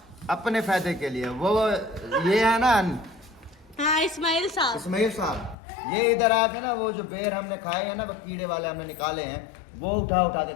अपने फायदे के लिए, वो ये है ना हाँ, इस्माइल साहब। इस्माइल साहब, ये इधर आके ना वो जो बेर हमने खाए हैं ना, वो कीड़े वाले हमने निकाले हैं, वो उठा उठा के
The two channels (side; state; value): right; drops out; at 5.6 s